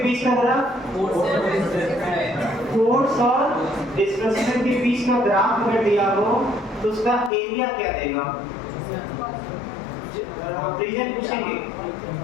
का ग्राफ? फोर्स और डिस्प्लेसमेंट के बीच का ग्राफ अगर दिया हो तो उसका एरिया क्या देगा? रीजन पूछेंगे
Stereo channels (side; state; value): right; drops out; at 7.3 s